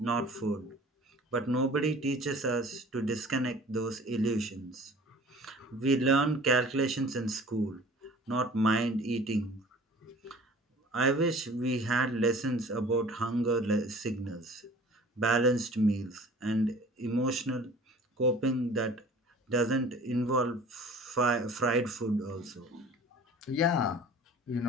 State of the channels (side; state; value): both; normal; correlation 0.46